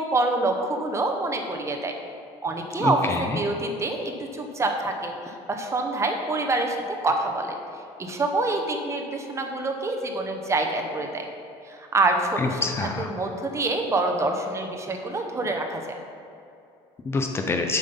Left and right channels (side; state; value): both; normal; correlation 0.46